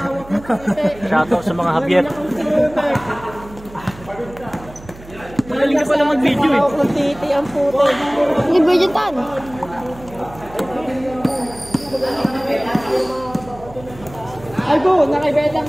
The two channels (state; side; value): noise; right; hum, 18 dB below the sound